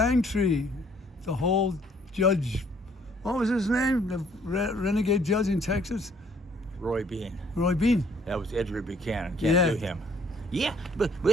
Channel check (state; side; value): normal; both; correlation 0.61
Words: the whole judge. What was his name? The renegade judge in Texas. Roy Bean. Roy Bean. That was Edward Buchanan. Can't do him. Yeah, but